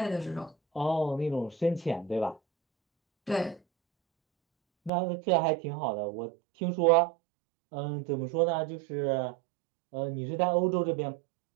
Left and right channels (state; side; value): drops out; left; at 4.9 s